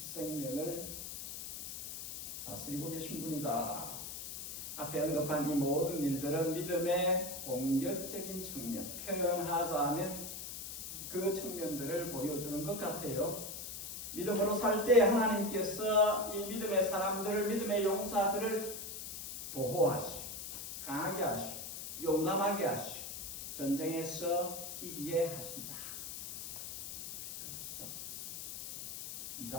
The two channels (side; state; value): left; noise; hiss, 8 dB below the sound